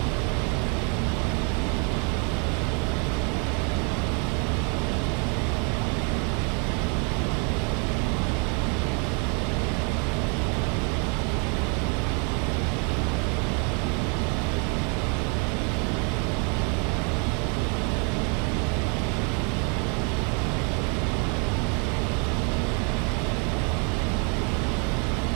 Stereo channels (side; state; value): left; quieter; 36.2 dB